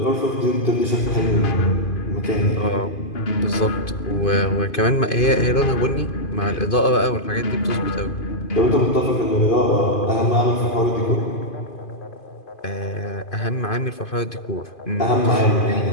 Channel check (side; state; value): right; late; 2.5 ms